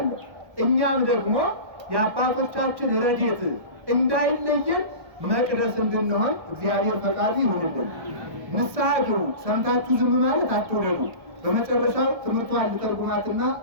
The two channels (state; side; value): late; left; 1.1 ms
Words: እኛም ደግሞ የአባቶቻችን ረድኤት እንዳይለየን መቅደስ እንድንሆን እግዚአብሔር ፈቃዱ ይሁንልን። ንስሐ ግቡ፣ ሰምታችሁ ዝም ማለት አትውደዱ። በመጨረሻው ትምህርቷን ልተርጉማትና